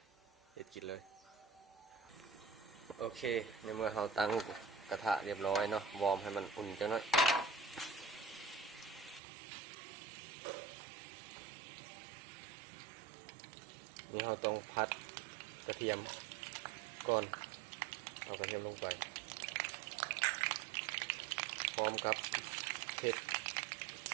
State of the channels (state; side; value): drops out; left; at 9.2 s